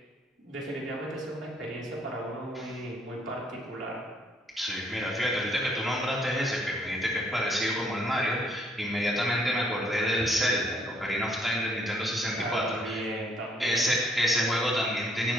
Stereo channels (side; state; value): both; normal; correlation 0.66